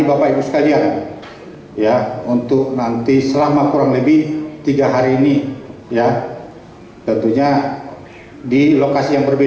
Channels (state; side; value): identical; both; correlation 1.00